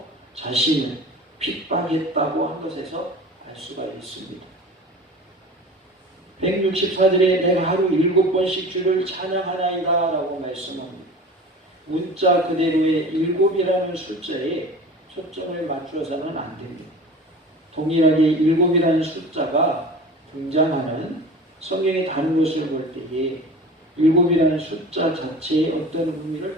자신을 핍박했다고 한 것에서 알 알 수가 있습니다. 164절에 내가 하루 7번씩 주를 찬양하나이다 라고 말씀합니다. 문자 그대로의 7이라는 숫자에 초점을 맞추어서는 안 됩니다. 동일하게 7이라는 숫자가 등장하는 성경의 다른 것을 볼 때에 7이라는 숫자 자체에 어떤 의미를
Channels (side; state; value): both; normal; correlation 0.38